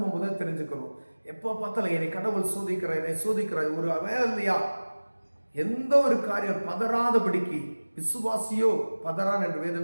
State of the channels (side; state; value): both; inverted; correlation -1.00